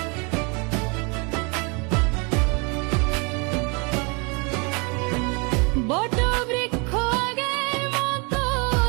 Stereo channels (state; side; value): quieter; left; 31.6 dB